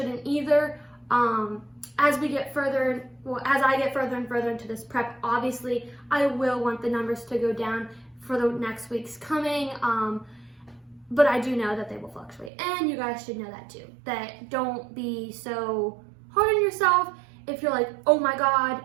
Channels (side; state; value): left; drops out; at 12.5 s